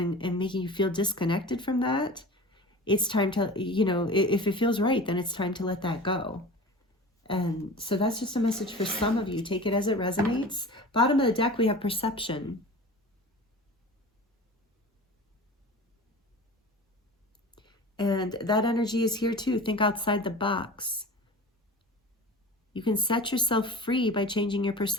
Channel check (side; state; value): both; normal; correlation 0.36